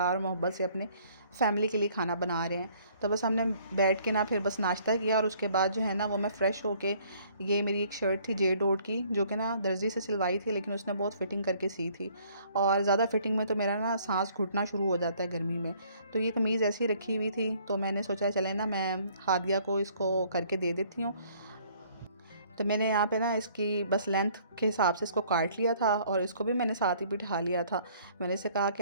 और मोहब्बत से अपने फैमिली के लिए खाना बना रहे हैं। तो बस हमने बैठ के ना फिर बस नाश्ता किया, और उसके बाद जो है ना वो मैं फ़्रेश होके, ये मेरी एक शर्ट थी जे डॉट की, जो कि ना दर्जी से सिलवाई थी, लेकिन उसने बहुत फ़िटिंग करके सी थी, और ज़्यादा फ़िटिंग में तो मेरा ना सांस घुटना शुरू हो जाता है गर्मी में। तो ये कमीज़ ऐसी ही रखी हुई थी, तो मैंने सोचा चले ना मैं हादिया को इसको करके दे देती हूँ। तो मैंने यहाँ पे ना इसकी बस लेंथ के हिसाब से इसको काट लिया था, और इसको भी मैंने साथ ही बिठा लिया था। मैंने इसे कहा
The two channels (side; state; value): both; inverted; correlation -0.60